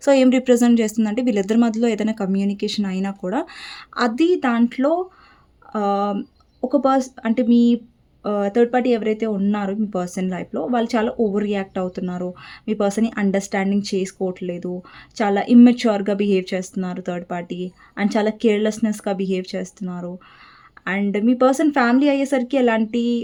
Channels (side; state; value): both; identical; correlation 1.00